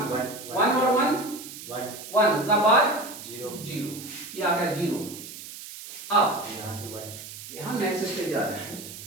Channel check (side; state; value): right; noise; hiss, 12 dB below the sound